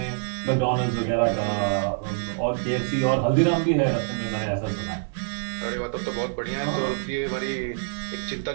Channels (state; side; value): silent; left; 61 dB below the other